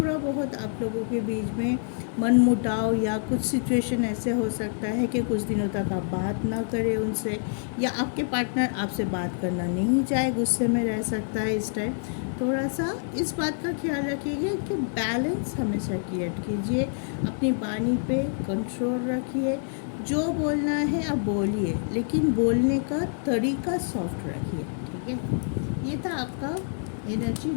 बहुत आप लोगों के बीच में मनमुटाव या कुछ सिचुएशन ऐसे हो सकता है कि कुछ दिनों तक आप बात ना करें उनसे, या आपके पार्टनर आपसे बात करना नहीं चाहे, गुस्से में रह सकता है। इस टाइम थोड़ा सा इस बात का ख्याल रखिएगा कि बैलेंस हमेशा क्रिएट कीजिए, अपनी वाणी पे कंट्रोल रखिए, जो बोलना है आप बोलिए, लेकिन बोलने का तरीका सॉफ्ट रखिए, ठीक है। ये था आपका एनर्जी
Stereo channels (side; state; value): right; silent; 58 dB below the other